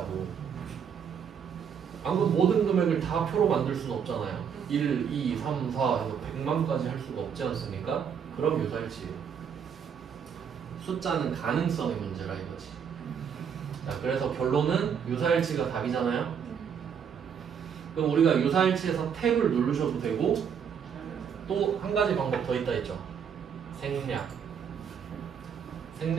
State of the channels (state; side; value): quieter; left; 7.5 dB